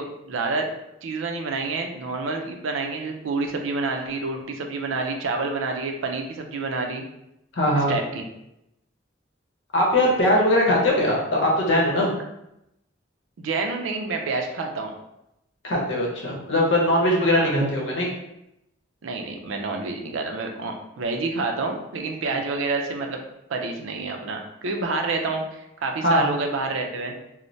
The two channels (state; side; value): normal; both; correlation 0.00